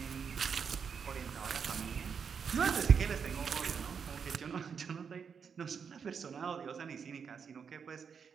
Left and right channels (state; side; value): quieter; left; 6.5 dB